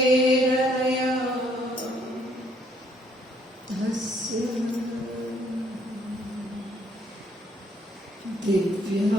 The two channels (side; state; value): both; normal; correlation 0.66